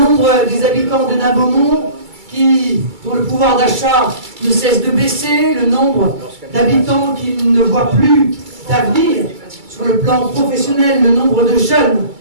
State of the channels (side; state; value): left; late; 2.3 ms